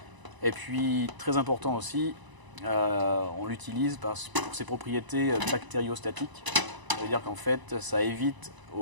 Et puis très important aussi, on l'utilise pour ses propriétés bactériostatiques. Ça veut dire qu'en fait, ça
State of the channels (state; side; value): late; left; 1.0 ms